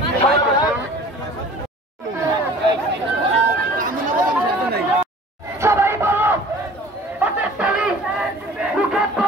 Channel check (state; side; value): normal; both; correlation 0.46